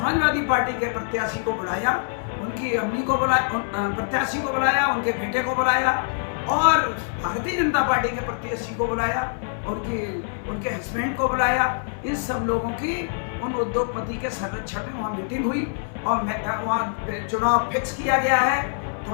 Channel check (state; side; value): silent; right; 62 dB below the other